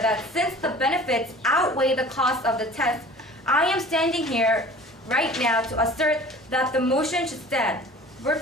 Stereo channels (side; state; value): both; normal; correlation 0.44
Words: since the benefits outweigh the cost of the test, I am standing here right now to assert that the motion should stand. Word